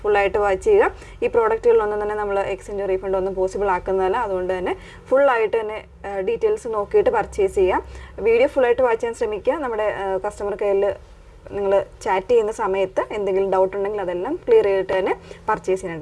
ഫുള്ളായിട്ട് വാച്ച് ചെയ്യുക. ഈ പ്രോഡക്റ്റുകളിലൊന്നും തന്നെ നമ്മൾ എക്സ്ചേഞ്ച് റീഫണ്ട് ഒന്നും പോസിബിൾ ആക്കുന്നതല്ല. അതുകൊണ്ട് തന്നെ ഫുള്ളായിട്ട് തന്നെ ഡീറ്റെയിൽസ് നോക്കിയിട്ട് പർച്ചേസ് ചെയ്യാം. വീഡിയോ ഫുള്ളായിട്ട് വാച്ച് ചെയ്യാൻ ശ്രമിക്കുക. നമ്മുടെ കസ്റ്റമർ കെയറിൽ നിങ്ങൾ ചാറ്റ് ചെയ്യുന്ന സമയത്ത് എന്തെങ്കിലും ഡൗട്ട് ഉണ്ടെങ്കിൽ അതെല്ലാം ക്ലിയർ ചെയ്തിട്ട് തന്നെ പർച്ചേസ്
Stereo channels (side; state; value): both; identical; correlation 1.00